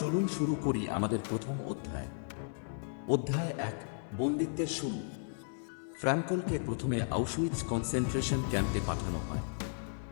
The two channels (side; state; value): right; silent; 55 dB below the other